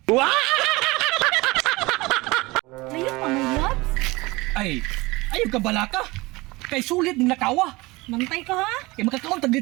Layo pa mo, Labs. Ay, ayaw ka bala ka. Kay sulit din nakawa. Mantay ka, ha? Kay makakaon tag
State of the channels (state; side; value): quieter; left; 22.3 dB